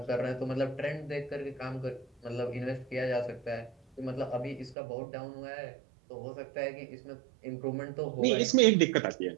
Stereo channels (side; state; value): left; drops out; at 4.8 s